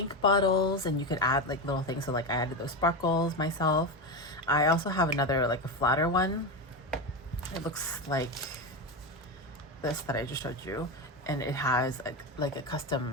bottles, and you could add like little things. So like I added those sparkles myself. I also have another like a flatter one. It looks like this that I just showed you, and it has like a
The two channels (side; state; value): both; normal; correlation 0.16